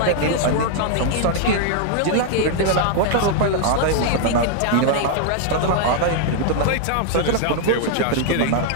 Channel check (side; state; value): both; different; correlation 0.00